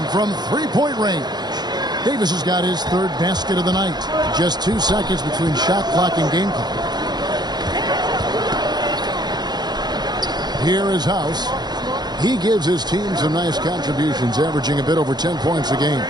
from three-point range. Davis has got his third basket of the night. Just 2 seconds between shot clock and game clock. Here is House. He gives his team some nice contributions, averaging a bit over 10 points a game.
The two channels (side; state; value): left; late; 0.20 ms